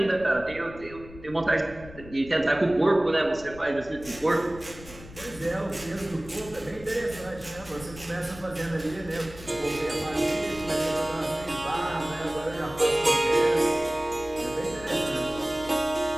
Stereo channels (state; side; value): noise; left; rumble, 17 dB below the sound